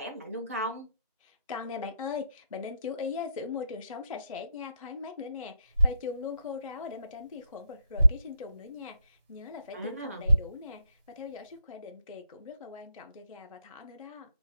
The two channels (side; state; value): both; inverted; correlation -0.77